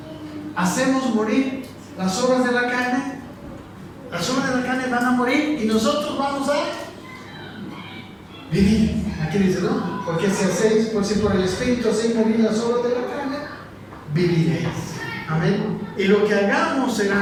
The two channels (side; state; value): both; identical; correlation 1.00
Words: Hacemos morir las obras de la carne. Las obras de la carne van a morir y nosotros vamos a vivir. Aquí dice, ¿no? Porque si por el Espíritu hacéis morir las obras de la carne, viviréis. Amén. Y lo que hagamos